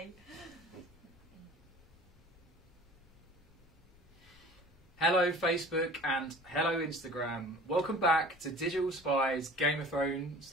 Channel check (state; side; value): noise; left; rumble, 27 dB below the sound